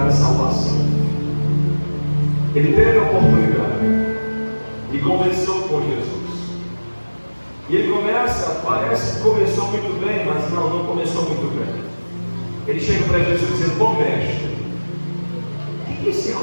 a salvação. Ele teve a oportunidade e conversou com Jesus. E ele começa, parece que começou muito bem, mas não começou muito bem. Ele chega para Jesus dizendo: bom mestre, o que esse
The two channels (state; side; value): inverted; both; correlation -1.00